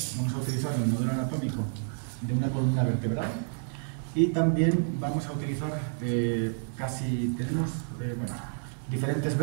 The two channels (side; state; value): left; silent; 58 dB below the other